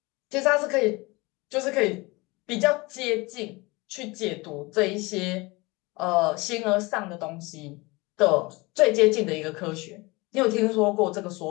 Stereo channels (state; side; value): quieter; right; 24.2 dB